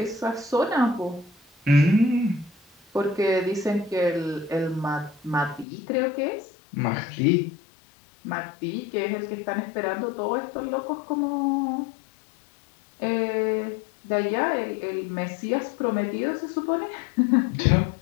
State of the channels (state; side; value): drops out; right; at 5.7 s